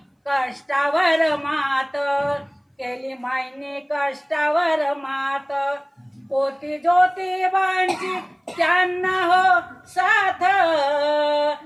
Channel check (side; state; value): both; identical; correlation 1.00